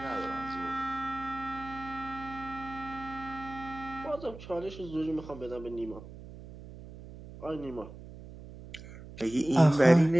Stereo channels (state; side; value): noise; right; hum, 15 dB below the sound